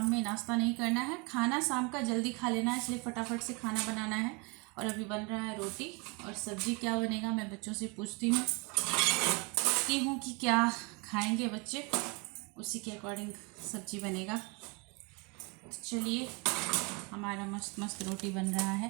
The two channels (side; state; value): left; quieter; 29.8 dB